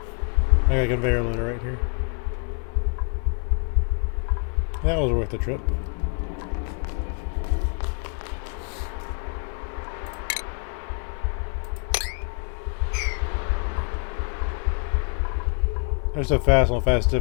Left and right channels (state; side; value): quieter; right; 39.9 dB